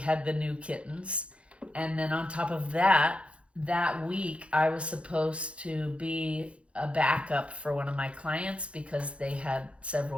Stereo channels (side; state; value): left; late; 0.061 ms